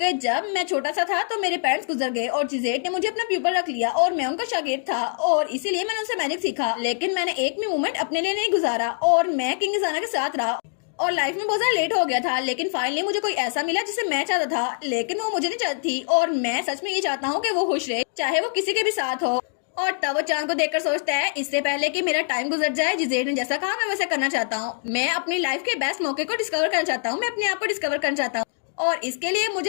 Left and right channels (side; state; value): right; silent; digital silence